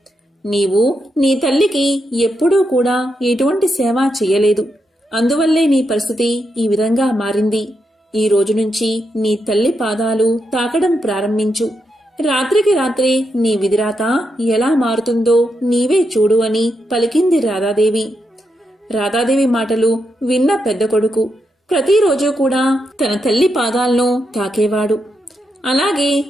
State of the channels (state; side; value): normal; both; correlation 0.83